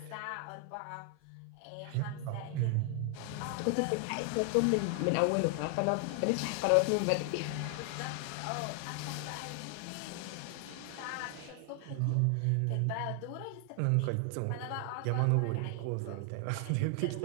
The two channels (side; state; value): both; different; correlation 0.00